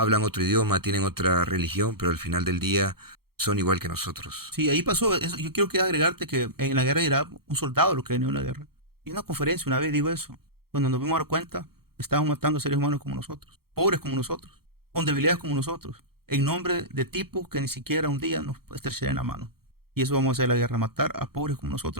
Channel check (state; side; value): late; left; 0.94 ms